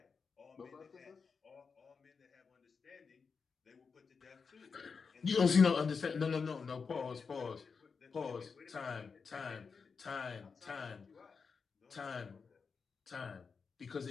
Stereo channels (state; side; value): quieter; right; 5.3 dB